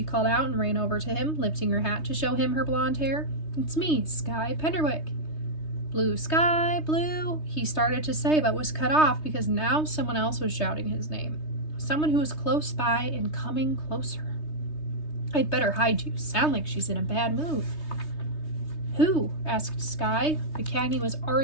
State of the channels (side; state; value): right; late; 3.2 ms